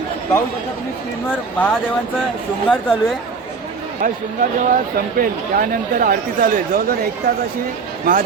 पाहू शकता तुम्ही स्क्रीनवर महादेवांचा शृंगार चालू आहे. हा शृंगार जेव्हा संपेल त्यानंतर आरती चालू आहे. जवळजवळ 1 तास अशी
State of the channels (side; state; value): left; quieter; 5.0 dB